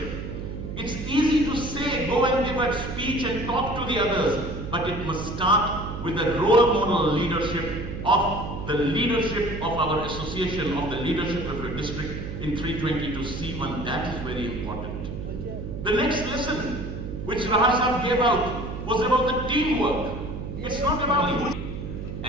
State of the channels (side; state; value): right; noise; hum, 7 dB below the sound